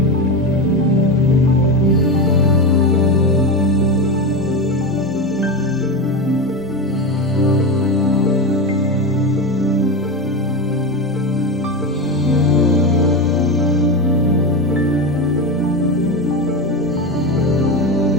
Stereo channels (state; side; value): normal; both; correlation 0.17